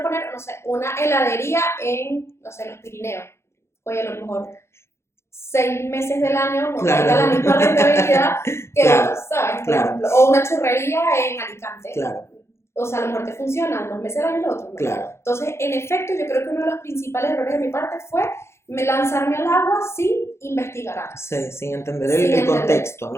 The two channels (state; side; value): late; right; 0.13 ms